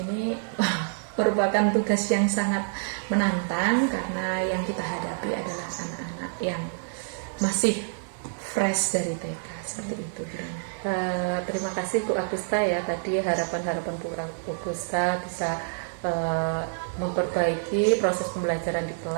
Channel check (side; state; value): left; silent; digital silence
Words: merupakan tugas yang sangat menantang karena yang kita hadapi adalah anak-anak yang masih fresh dari TK, seperti itu. Terima kasih Bu Agusta ya, tadi harapan-harapan Bu Agusta bisa memperbaiki proses pembelajaran di